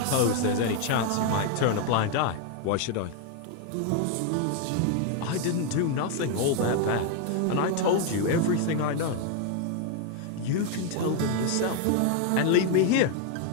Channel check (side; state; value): both; different; correlation 0.00